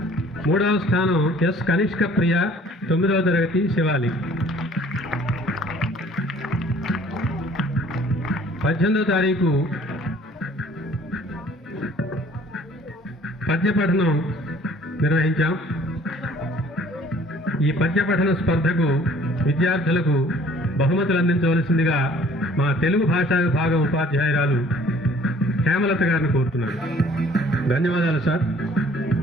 3వ స్థానం ఎస్ కనిష్క ప్రియ, 9వ తరగతి, శివాలి. 18వ తారీఖు పద్యపఠనం నిర్వహించాం. ఈ పద్యపఠన స్పర్ధకు విద్యార్థులకు బహుమతులు అందించవలసిందిగా మా తెలుగు భాషా విభాగం ఉపాధ్యాయురాలు హేమలత గారిని కోరుతున్నాను. ధన్యవాదాలు సార్.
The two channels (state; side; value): normal; both; correlation 0.54